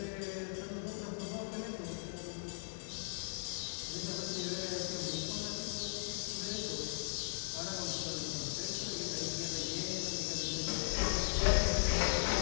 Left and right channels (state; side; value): silent; right; digital silence